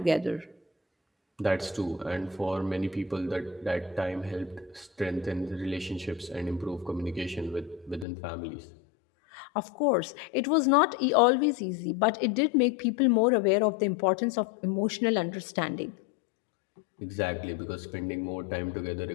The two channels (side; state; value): right; drops out; at 8.1 s